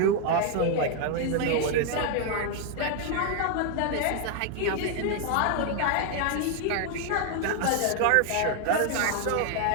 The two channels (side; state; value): both; different; correlation 0.00